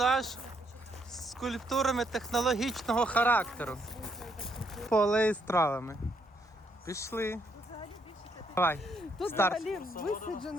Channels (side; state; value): both; normal; correlation 0.73